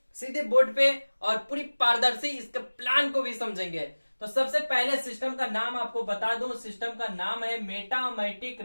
सीधे बोर्ड पे और पूरी पारदर्शी इसके प्लान को भी समझेंगे। तो सबसे पहले सिस्टम का नाम आपको बता दूं, सिस्टम का नाम है मेटामैटिक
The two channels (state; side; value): inverted; both; correlation -1.00